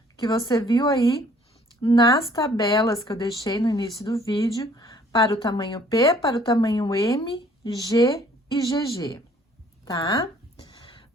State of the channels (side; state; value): both; normal; correlation 0.58